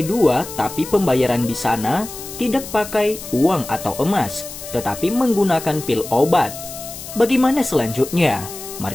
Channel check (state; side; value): noise; left; hiss, 12 dB below the sound